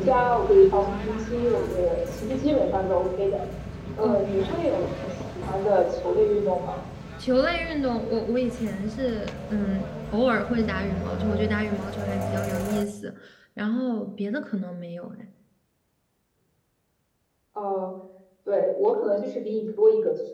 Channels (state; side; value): identical; both; correlation 1.00